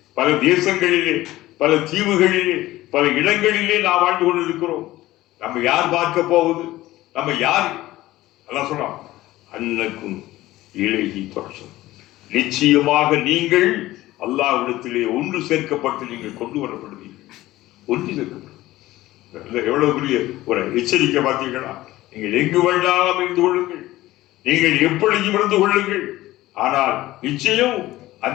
பல தேசங்களிலே, பல தீவுகளிலே, பல இடங்களிலே நாம் வாழ்ந்து கொண்டிருக்கிறோம். நம்ம யார் பார்க்க போவது? நம்ம யார்? அல்லாஹ் சொல்றான், அன்னக்கும் இலகி தொசரும், நிச்சயமாக நீங்கள் அல்லாஹ்விடத்திலே ஒன்று சேர்க்கப்பட்டு நீங்கள் கொண்டு வரப்படுவீர்கள். ஒன்று சேர்க்கப்படும். எவ்வளவு பெரிய ஒரு எச்சரிக்கை பார்த்தீர்களா? நீங்கள் எங்கு வேண்டாம் இருந்து கொள்ளுங்கள், நீங்கள் எப்படியும் இருந்து கொள்ளுங்கள். ஆனால் நிச்சயம்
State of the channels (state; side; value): quieter; right; 16.6 dB